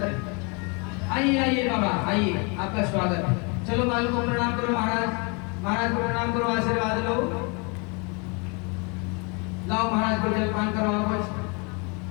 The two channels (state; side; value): quieter; right; 32.4 dB